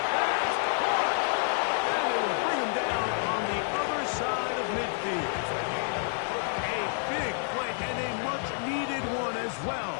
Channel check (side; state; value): right; silent; 59 dB below the other